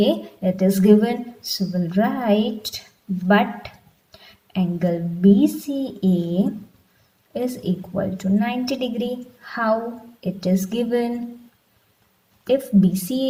it is given. So, we'll write, but angle BCA is equal to 90 degree. How? It is given. If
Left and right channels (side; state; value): both; identical; correlation 1.00